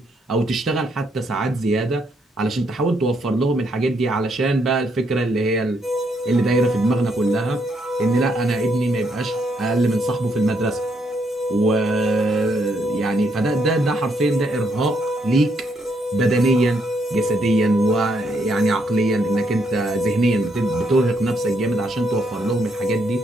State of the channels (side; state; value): both; normal; correlation 0.75